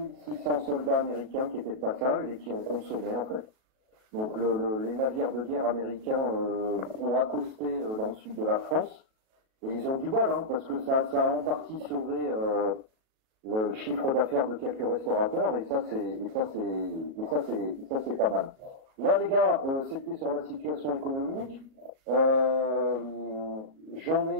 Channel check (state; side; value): late; left; 37 ms